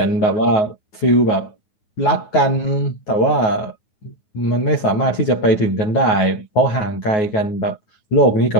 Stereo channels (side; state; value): right; late; 9.4 ms